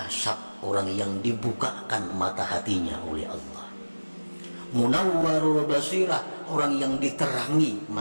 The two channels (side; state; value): both; inverted; correlation -1.00